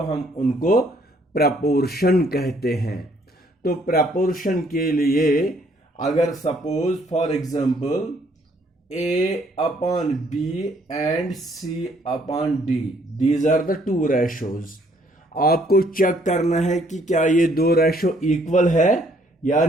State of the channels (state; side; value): normal; both; correlation 0.65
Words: हम उनको प्रपोर्शन कहते हैं। तो प्रपोर्शन के लिए अगर suppose for example A upon B and C upon D, these are the two ratios. आपको चेक करना है कि क्या ये दो रेशो इक्वल है या